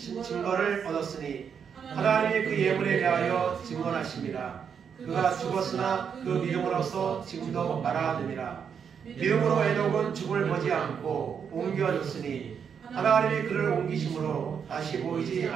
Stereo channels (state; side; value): quieter; left; 7.2 dB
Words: 얻었으니 하나님이 그 예물에 대하여 증언하심이라. 그가 죽었으나 그 믿음으로써 지금도 말하느니라. 믿음으로 에녹은 죽음을 보지 않고 옮겨졌으니 하나님이 그를 옮기심으로 다시 보이지